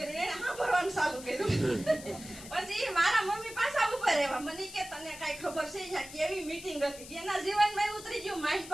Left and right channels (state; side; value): noise; left; hiss, 14 dB below the sound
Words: એને સાંભળવાનું ચાલુ કર્યું. પછી મારા મમ્મી પાછા ઉપર રહેવા. મને કે તને કઈ ખબર છે અહીંયા કેવી મીટિંગ હતી? એના જીવનમાં ઉતરી ગયું માઇન્ડ